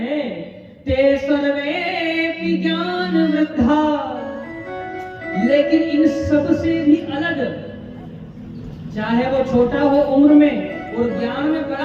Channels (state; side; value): identical; both; correlation 1.00